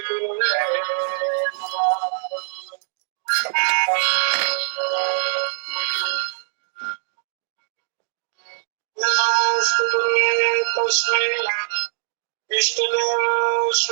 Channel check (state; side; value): silent; left; digital silence